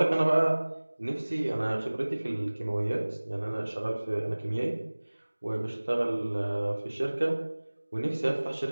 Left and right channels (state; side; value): inverted; both; correlation -1.00